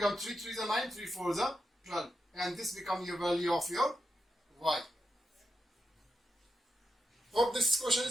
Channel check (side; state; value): both; normal; correlation 0.87